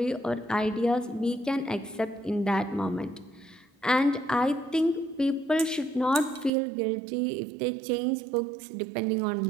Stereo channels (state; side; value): drops out; left; at 6.5 s